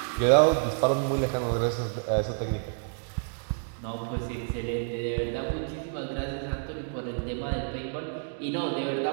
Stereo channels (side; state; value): left; silent; digital silence